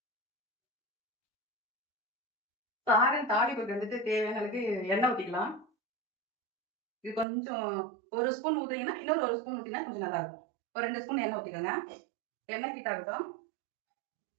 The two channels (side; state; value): left; drops out; at 7.2 s